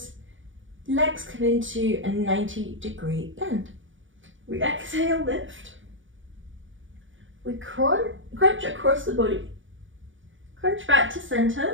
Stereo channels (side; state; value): left; late; 0.56 ms